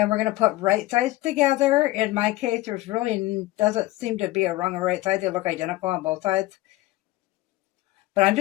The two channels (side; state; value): right; quieter; 17.8 dB